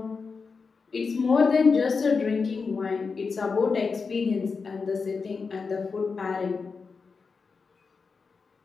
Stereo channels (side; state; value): right; quieter; 4.9 dB